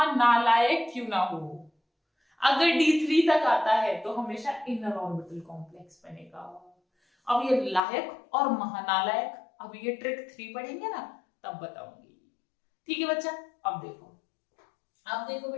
क्यों ना हो, अगर D3 तक आता है तो हमेशा इनर ऑर्बिटल कॉम्प्लेक्स बनेगा। अब ये लायक और महानालायक, अब ये ट्रिक 3 पढ़ेंगे ना तब बताऊंगी, ठीक है बच्चा। अब देखो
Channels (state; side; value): drops out; right; at 7.8 s